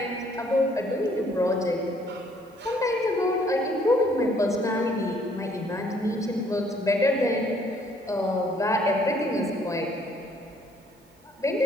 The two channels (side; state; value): both; normal; correlation 0.63